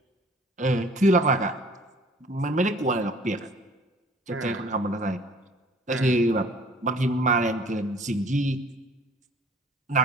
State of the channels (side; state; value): both; normal; correlation 0.52